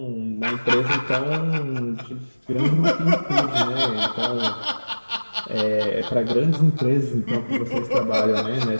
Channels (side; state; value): both; inverted; correlation -1.00